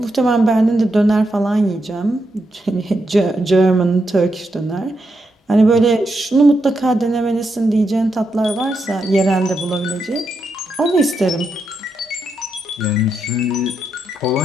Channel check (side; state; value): both; normal; correlation 0.83